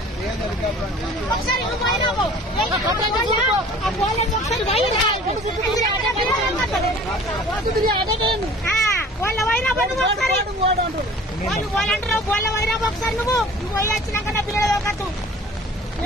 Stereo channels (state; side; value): normal; both; correlation 0.47